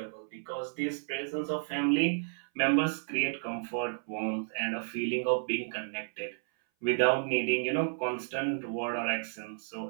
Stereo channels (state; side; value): silent; left; 56 dB below the other